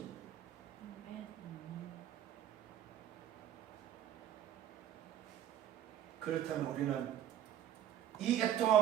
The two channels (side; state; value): left; quieter; 10.7 dB